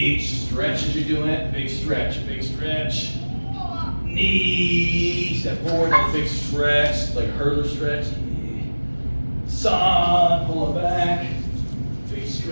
stretch as you're doing it, big stretch, knee, step forward, big stretch, like a hurdler stretch, San, pull it back. Big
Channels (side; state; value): both; inverted; correlation -1.00